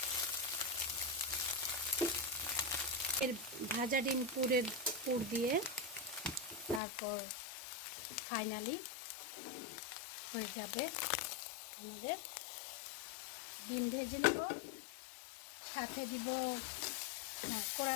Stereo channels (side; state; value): right; drops out; at 6.8 s